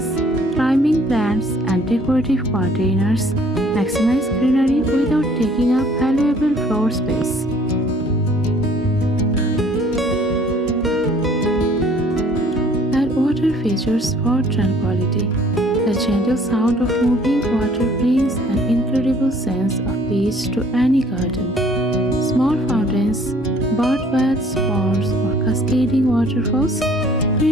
climbing plants, and decorative containers maximize greenery without taking up valuable floor space. Water features for tranquility. The gentle sound of moving water brings an incredible sense of peace to any garden. Small fountains, bird baths, ponds, or cascading waterfalls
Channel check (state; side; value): normal; both; correlation 0.57